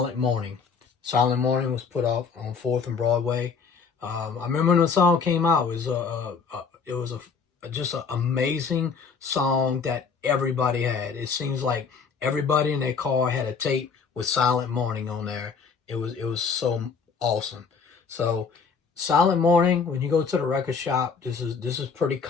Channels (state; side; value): quieter; right; 5.6 dB